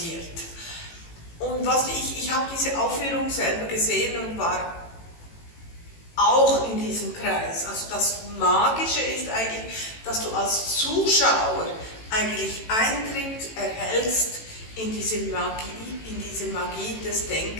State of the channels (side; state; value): right; late; 18 ms